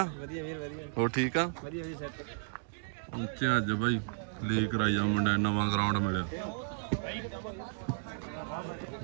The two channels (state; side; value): silent; left; digital silence